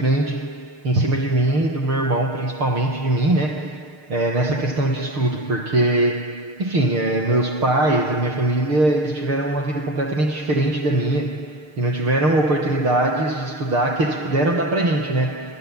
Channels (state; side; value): late; left; 6.6 ms